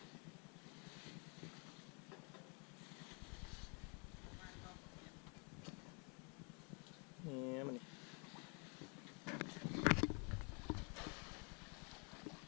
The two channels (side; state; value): right; quieter; 34.8 dB